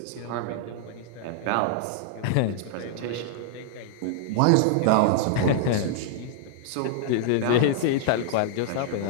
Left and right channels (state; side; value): different; both; correlation -0.01